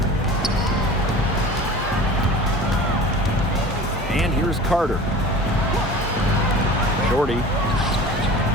And here's Carter. Shorty.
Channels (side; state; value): both; normal; correlation 0.39